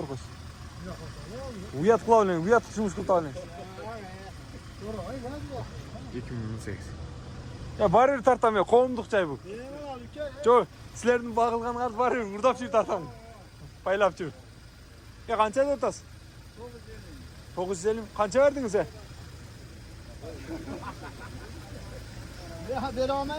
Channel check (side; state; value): both; identical; correlation 1.00